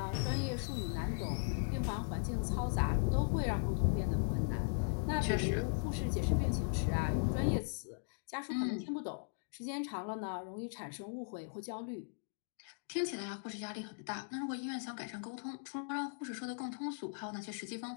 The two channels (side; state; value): right; silent; digital silence